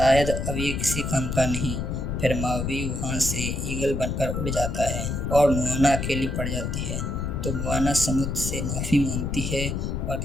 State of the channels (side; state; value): left; noise; rumble, 2 dB below the sound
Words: अब ये किसी काम का नहीं। फिर मावी वहाँ से ईगल बनकर उड़ जाता है और मोआना अकेली पड़ जाती है, तो मोआना समुद्र से माफ़ी मांगती है और